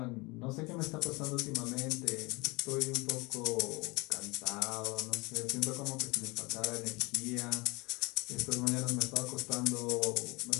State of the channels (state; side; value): quieter; right; 25.7 dB